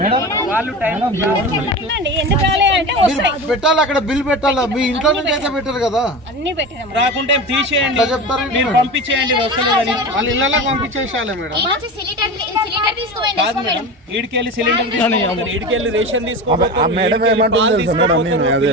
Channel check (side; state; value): both; normal; correlation 0.28